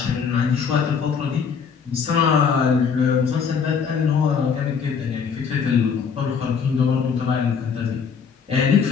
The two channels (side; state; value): right; quieter; 6.3 dB